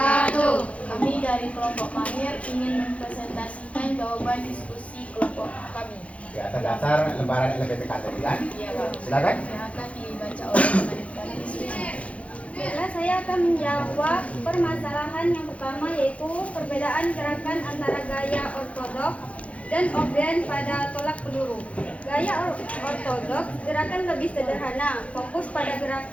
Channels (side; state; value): right; late; 0.064 ms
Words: Kami dari kelompok mahir ingin mempresentasikan jawaban diskusi kelompok kami. Di atas dasar lembaran LPPK tadi kan? Iya, Pak. Silakan. Yang akan dibaca oleh kami diskusi. Baiklah, saya akan menjawab permasalahan yang pertama, yaitu perbedaan gerakan antara gaya ortodoks dan obrien pada tolak peluru. Gaya ortodoks gerakan lebih sederhana, fokus pada